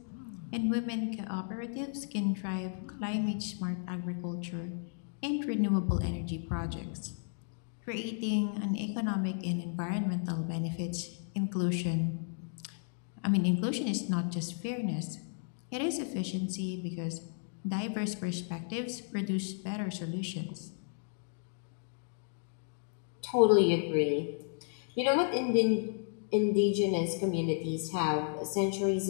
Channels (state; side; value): silent; right; digital silence